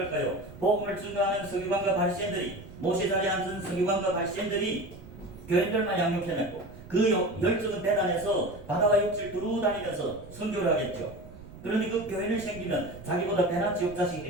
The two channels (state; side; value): noise; right; rumble, 17 dB below the sound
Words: 복음을 증거하는 서기관과 바리새인들이, 모세 자리에 앉은 서기관과 바리새인들이 교인들만 양육해냈고, 그 열정은 대단해서 바다와 육지를 두루 다니면서 선교를 하겠죠. 그런데 그 교인을 생기면 자기보다 배나 지옥 자식이